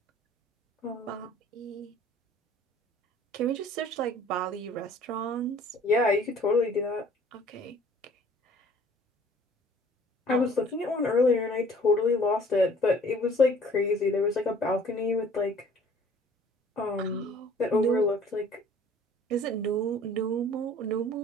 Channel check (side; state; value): both; normal; correlation 0.53